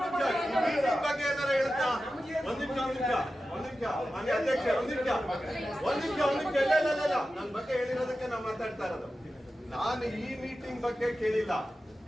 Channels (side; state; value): both; normal; correlation 0.93